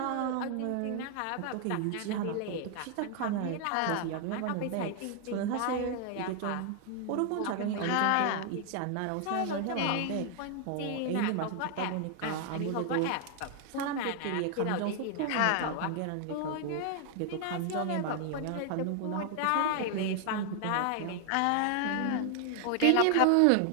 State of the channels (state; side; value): different; both; correlation 0.00